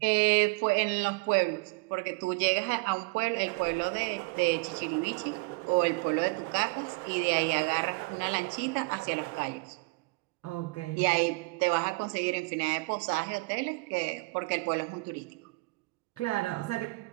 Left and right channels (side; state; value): left; quieter; 28.2 dB